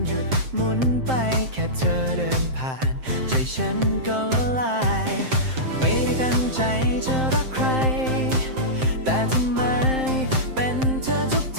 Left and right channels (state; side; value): late; left; 7.7 ms